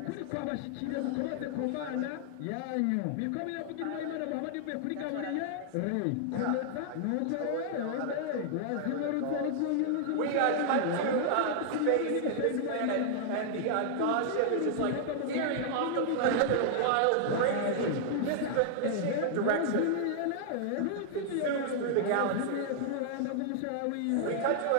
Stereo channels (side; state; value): both; different; correlation -0.01